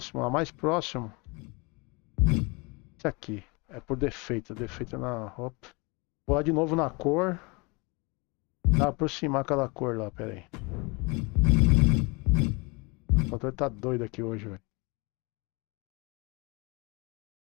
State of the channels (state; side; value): quieter; right; 28.0 dB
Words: A mais próximo. Esse aqui. É por defeito. Defeito na roupa. Vou lá de novo na cor. Pra aproximar aquela cor lá, pera aí. O controle tá doido aqui hoje, velho.